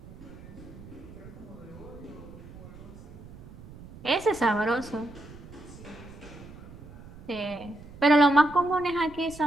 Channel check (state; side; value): noise; right; rumble, 17 dB below the sound